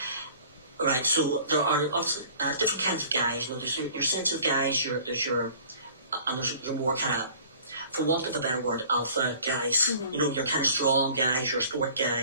Right, so there are different kinds of guys. You know, there's your sensitive guys. There's your more kind of, for want of a better word, alpha guys. Mm-hmm. You know, you're kind of strong guys. You're sport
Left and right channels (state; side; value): inverted; both; correlation -0.49